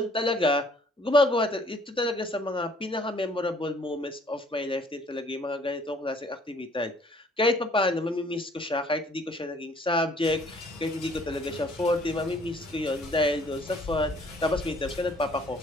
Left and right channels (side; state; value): both; normal; correlation 0.59